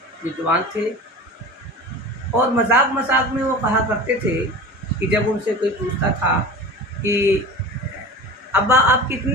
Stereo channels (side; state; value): both; normal; correlation 0.35